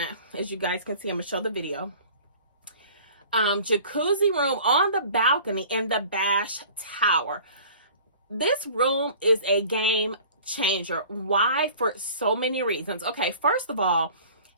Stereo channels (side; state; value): both; inverted; correlation -0.47